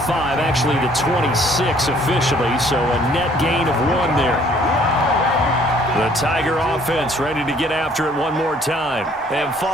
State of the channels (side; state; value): both; normal; correlation 0.60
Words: actually the 26 officially, so a net gain of 1 there. The Tiger offense ready to get after it one more time. And